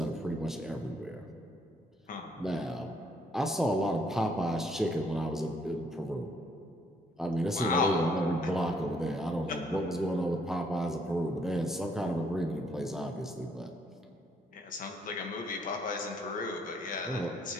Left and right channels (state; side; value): normal; both; correlation 0.68